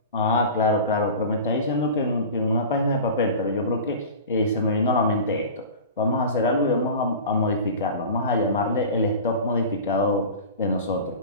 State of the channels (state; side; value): inverted; both; correlation -0.35